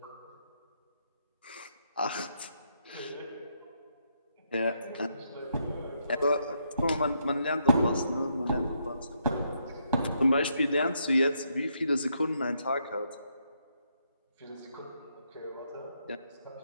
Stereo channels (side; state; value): both; inverted; correlation -0.77